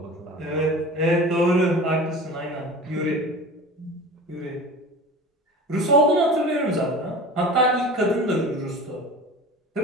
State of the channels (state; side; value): normal; both; correlation 0.36